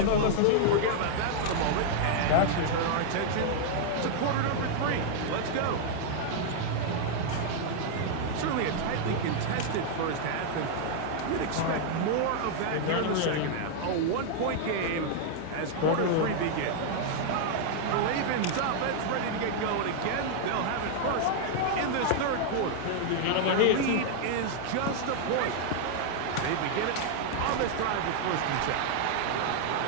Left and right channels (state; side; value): different; both; correlation 0.00